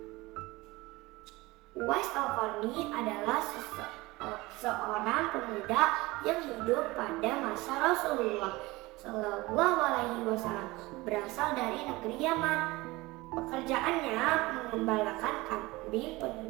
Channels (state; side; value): quieter; left; 21.2 dB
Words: Uwais Al-Qarni adalah seorang pemuda yang hidup pada masa Rasulullah Shallallahu Alaihi Wasallam, berasal dari negeri Yaman. Pekerjaannya mengembalakan kambing